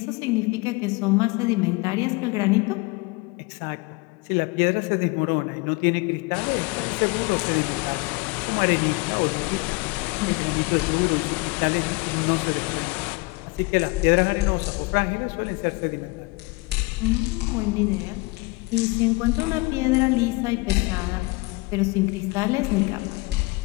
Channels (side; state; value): right; quieter; 25.6 dB